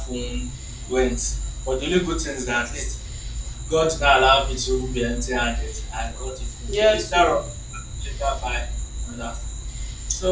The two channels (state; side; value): identical; both; correlation 1.00